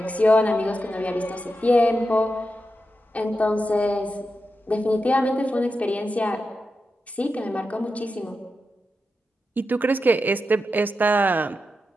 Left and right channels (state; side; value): normal; both; correlation 0.89